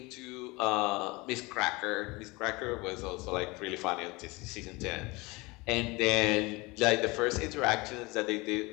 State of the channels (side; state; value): right; quieter; 24.1 dB